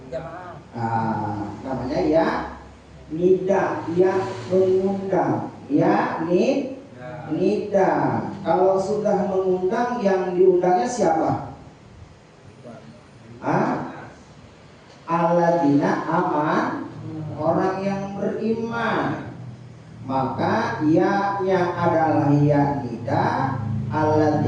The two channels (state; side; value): identical; both; correlation 1.00